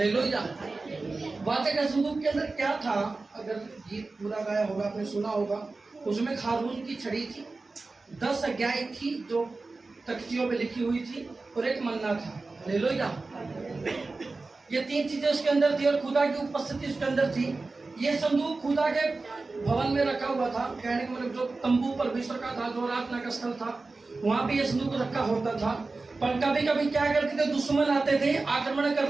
वाचा का संदूक के अंदर क्या था? अगर गीत पूरा गाया होगा, आपने सुना होगा, उसमें हारून की छड़ी थी, 10 आज्ञाएं थी जो तख्तियों पे लिखी हुई थी, और एक मन्ना था। हालेलुया। ये 3 चीजें उसके अंदर थी और खुदा की उपस्थिति उसके अंदर थी। ये संदूक खुदा के भवन में रखा हुआ था। कहने का मतलब जो तंबू परमेश्वर का था, जो आराधना का स्थल था, वहां पे ये संदूक रखा होता था। पर कभी कभी क्या करते थे, दुश्मन आते थे, आक्रमण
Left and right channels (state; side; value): quieter; left; 3.6 dB